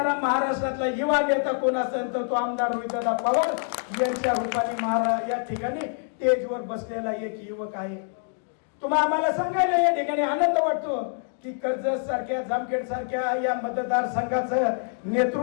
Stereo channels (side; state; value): right; silent; digital silence